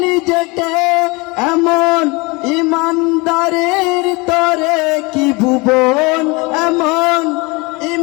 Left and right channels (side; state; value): right; quieter; 26.4 dB